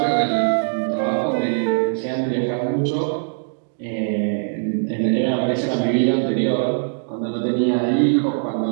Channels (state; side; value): silent; left; digital silence